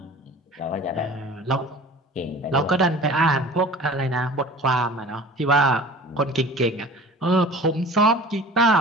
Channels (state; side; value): normal; both; correlation 0.42